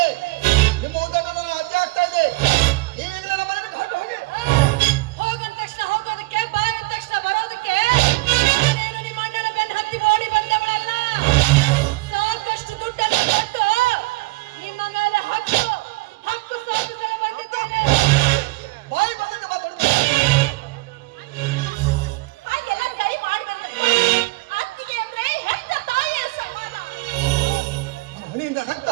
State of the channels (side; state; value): left; quieter; 23.7 dB